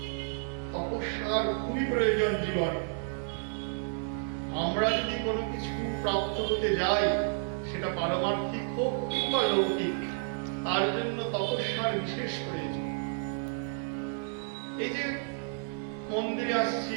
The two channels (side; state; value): left; silent; 57 dB below the other